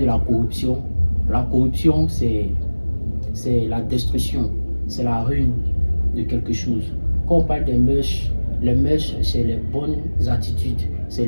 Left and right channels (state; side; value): inverted; both; correlation -1.00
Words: la corruption c'est la destruction, c'est la ruine de quelque chose. Quand on parle des mœurs, les mœurs c'est les bonnes attitudes, c'est